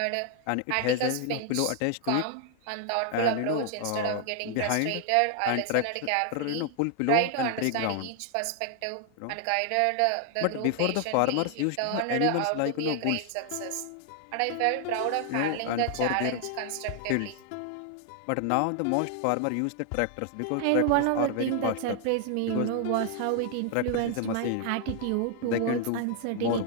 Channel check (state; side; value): different; both; correlation 0.00